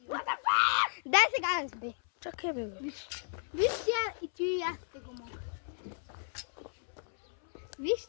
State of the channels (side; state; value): right; silent; 55 dB below the other